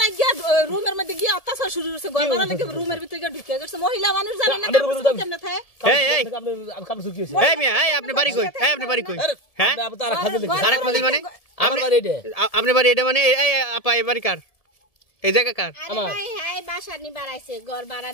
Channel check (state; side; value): late; right; 1.7 ms